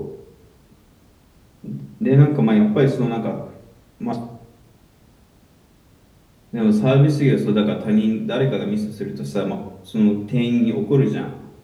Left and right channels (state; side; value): identical; both; correlation 1.00